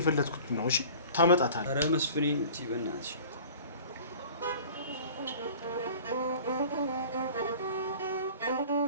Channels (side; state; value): both; inverted; correlation -0.43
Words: ነው። እሺ ታመጣታለህ። ኧረ መስፍኔ እንጂ በእናትሽ